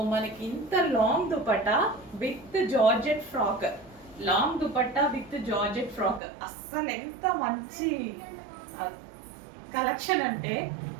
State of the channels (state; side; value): drops out; left; at 6.2 s